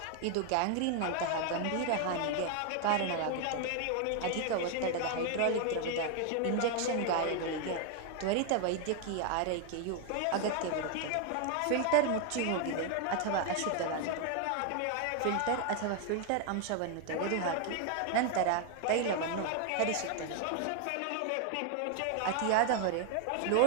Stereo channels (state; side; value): different; both; correlation 0.01